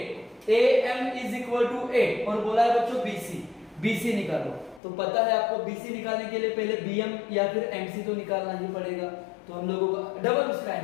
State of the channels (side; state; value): right; drops out; at 4.8 s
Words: AM is equal to 8, और बोला है बच्चों BC निकालो। तो पता है आपको BC निकालने के लिए पहले BM या फिर MC तो निकालना ही पड़ेगा, तो हम लोगों का डबल उसका